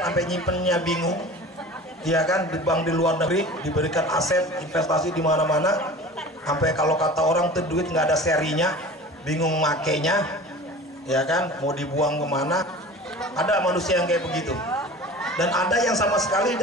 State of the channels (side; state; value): both; normal; correlation 0.39